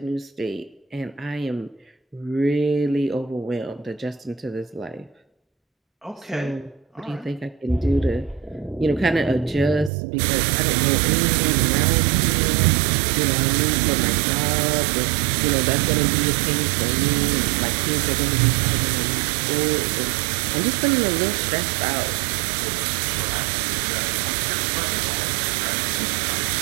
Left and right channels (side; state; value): left; drops out; at 9.9 s